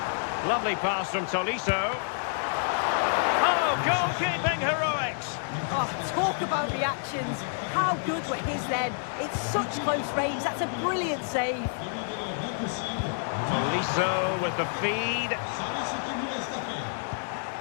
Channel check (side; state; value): right; silent; digital silence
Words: Lovely pass from Tolisso. Oh, goalkeeping heroics! Oh, talk about reactions. How good were his then? It's such close range, that's a brilliant save. Tolisso with the feed.